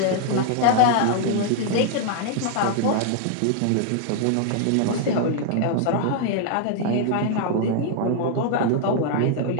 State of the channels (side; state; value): both; different; correlation 0.00